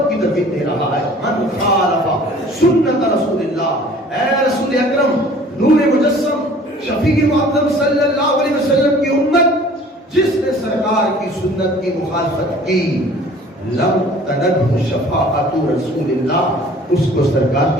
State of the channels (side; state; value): both; normal; correlation 0.50